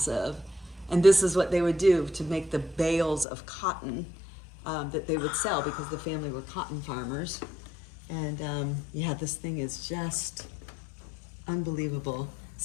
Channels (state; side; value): drops out; right; at 3.2 s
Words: And this is what they would do to make the bales of cotton that they would sell, because the family were cotton farmers. And yeah, this thing is just unbelievable.